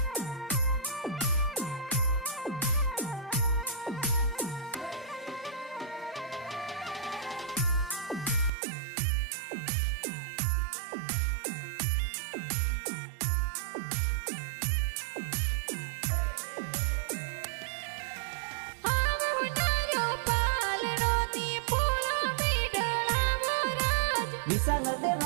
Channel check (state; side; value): drops out; left; at 8.5 s